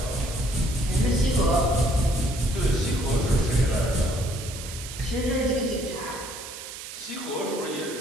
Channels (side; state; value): right; noise; hiss, 11 dB below the sound